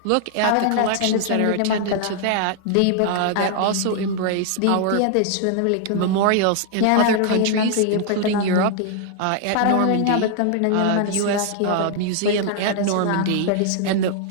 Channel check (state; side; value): different; both; correlation 0.00